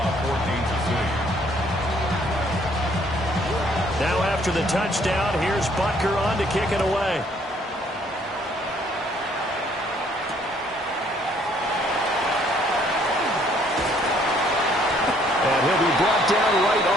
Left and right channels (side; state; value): both; normal; correlation 0.64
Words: 14-6. Now after the touchdown, here's Butker on to kick it away. And he'll be brought down right